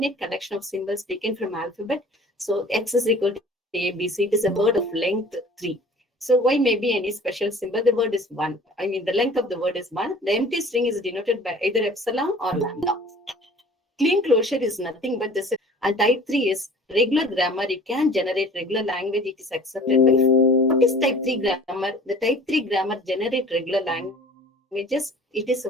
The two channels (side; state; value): both; normal; correlation 0.46